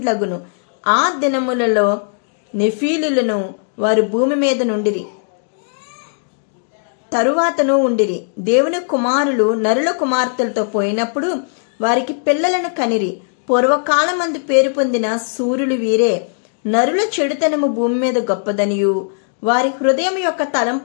ఆ దినములలో నెఫీలులను వారు భూమి మీద నుండిరి, తరువాతను ఉండిరి. దేవుని కుమారులు నరుల కుమార్తెలతో పోయినప్పుడు వారికి పిల్లలను కనిరి. పూర్వకాలమందు పేరు పొందిన సూర్యులు వీరే. నరుల చెడుతనము భూమి మీద గొప్పదనియు వారి హృదయం యొక్క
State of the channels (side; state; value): right; silent; digital silence